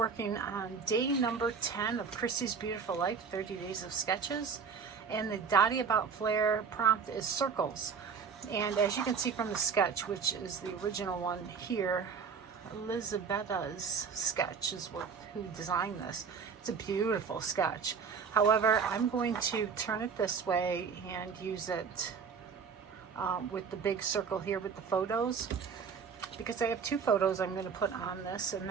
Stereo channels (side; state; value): left; quieter; 6.0 dB